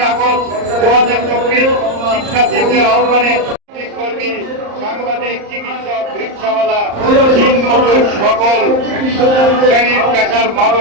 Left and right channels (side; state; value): left; late; 34 ms